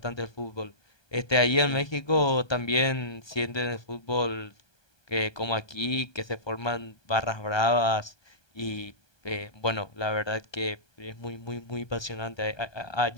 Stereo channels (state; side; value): late; right; 1.2 ms